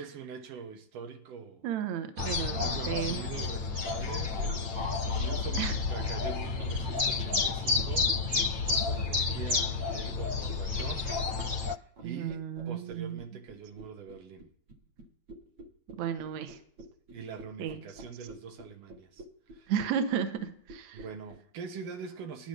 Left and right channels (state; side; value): late; left; 8.9 ms